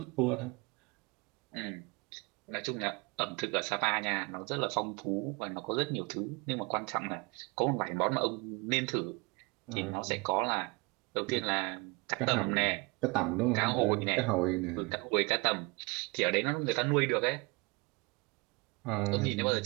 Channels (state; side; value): quieter; left; 28.1 dB